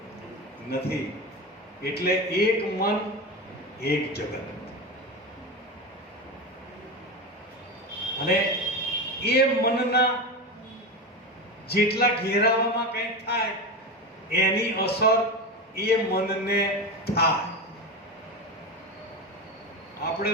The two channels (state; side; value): normal; both; correlation 0.21